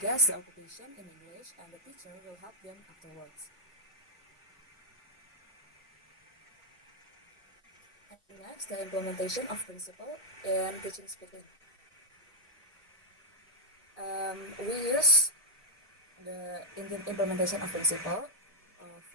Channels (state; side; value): normal; both; correlation -0.02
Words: guess the occupation in English, and the teacher will help them afterwards. And next, the implementation of principle in teaching speaking. We use the implementation of principle